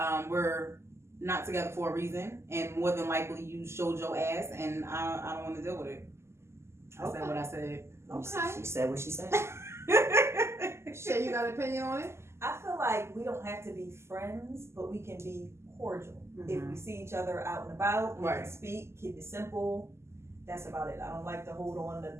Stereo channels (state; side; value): late; left; 0.13 ms